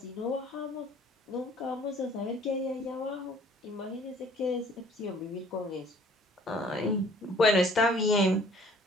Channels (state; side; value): normal; both; correlation 0.56